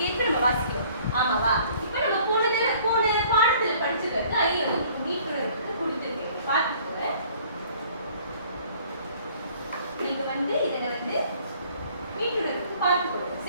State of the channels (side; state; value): both; inverted; correlation -0.56